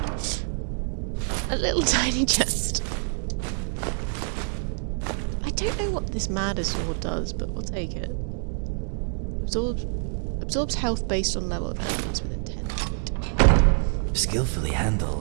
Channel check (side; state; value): left; silent; 57 dB below the other